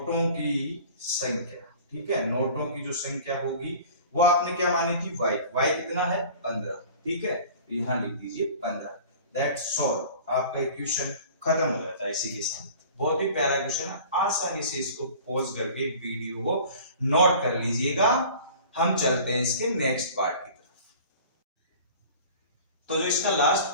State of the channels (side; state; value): both; inverted; correlation -0.44